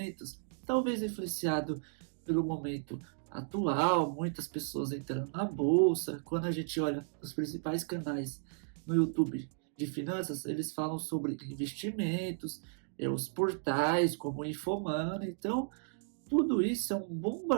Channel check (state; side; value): silent; left; digital silence